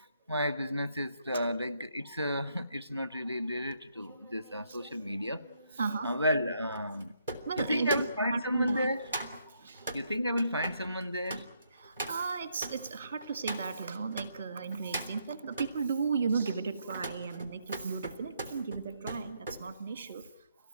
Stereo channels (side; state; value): both; inverted; correlation -0.75